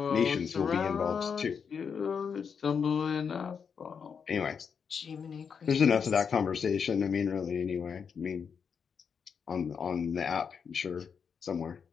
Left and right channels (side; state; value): right; quieter; 6.5 dB